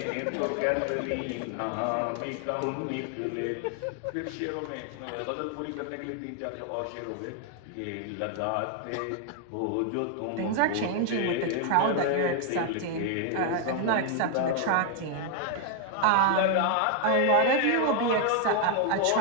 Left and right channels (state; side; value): different; both; correlation 0.00